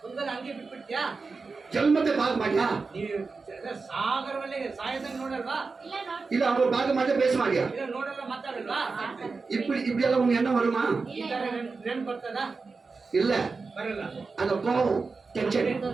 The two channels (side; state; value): left; quieter; 4.3 dB